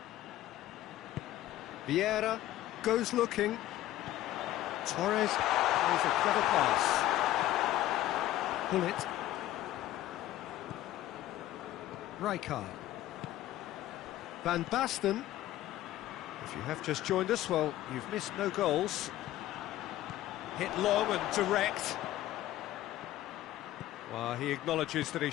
Vieira goes looking. Torres plays a clever pass. Bullet. Rijkaard. Van Basten. If you have just joined us, well, you've missed no goals. Hit long and direct. Well, he acknowledges that he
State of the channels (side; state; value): right; quieter; 14.5 dB